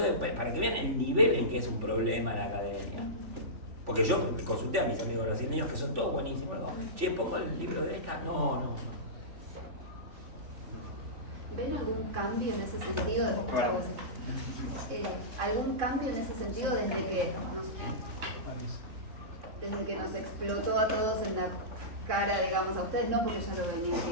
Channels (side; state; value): left; late; 3.4 ms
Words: para que vean el nivel en que es un problema la academia. Porque yo consulté a mis amigos brasileños, que son todos buenísimos. Digo, pongo el libro de esta. No. ¿Ven algún cambio en ese sentido? ¿Algún cambio en ese sentido desde que nos explotó a todos en la cara, digamos, a ustedes no, porque ya lo venían